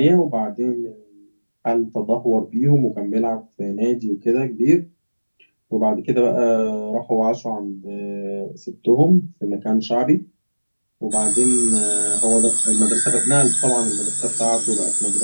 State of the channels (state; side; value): inverted; both; correlation -1.00